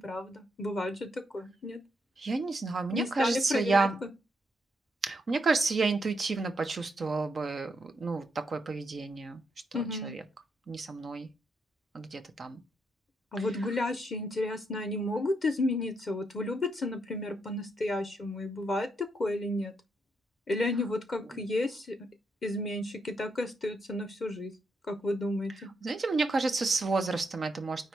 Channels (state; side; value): normal; both; correlation 0.79